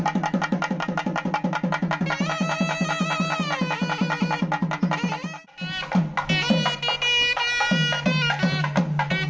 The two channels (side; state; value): both; identical; correlation 1.00